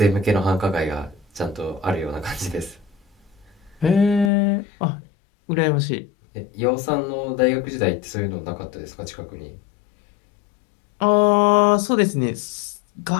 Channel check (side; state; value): right; drops out; at 4.3 s